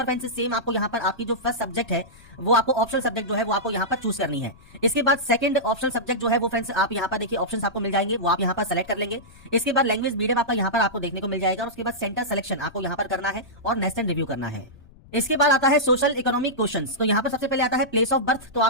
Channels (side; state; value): left; noise; rumble, 24 dB below the sound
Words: फ्रेंड्स सेम आपको यहाँ पर आपकी जो फर्स्ट सब्जेक्ट है वो आपको ऑप्शनल सब्जेक्ट जो है वो आपको यहाँ पर चूज करनी है। इसके बाद सेकंड ऑप्शनल सब्जेक्ट जो है वो फ्रेंड्स आप यहाँ पर देखिए ऑप्शंस आपको मिल जाएंगे वो आप यहाँ पर सेलेक्ट कर लेंगे। इसके बाद लैंग्वेज मीडियम आपका यहाँ पर आपको देखने को मिल जाएगा और उसके बाद सेंटर सिलेक्शन आपको यहाँ पर करना है और नेक्स्ट एंड रिव्यू करना है। इसके बाद आता है सोशल इकोनॉमिक क्वेश्चंस। तो यहाँ पर सबसे पहले आता है प्लेस ऑफ बर्थ। तो